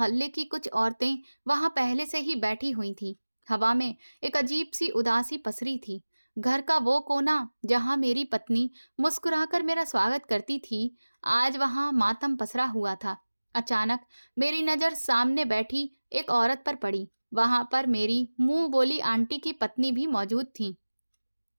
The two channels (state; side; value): inverted; both; correlation -1.00